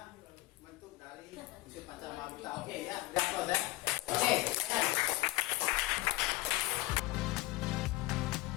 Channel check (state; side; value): quieter; right; 18.7 dB